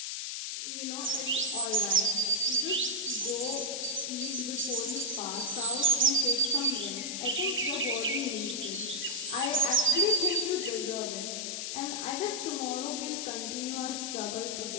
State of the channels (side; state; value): left; noise; hiss, 4 dB below the sound